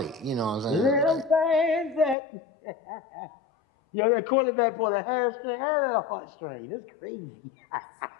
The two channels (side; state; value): right; drops out; at 2.1 s